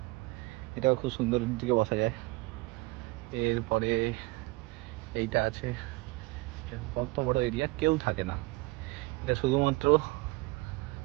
এটাও খুব সুন্দর দিকে বসা যায়। এরপরে এইটা আছে, কত বড় এরিয়া, কেউ থাকে না, এটা শুধুমাত্র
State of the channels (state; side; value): quieter; left; 23.0 dB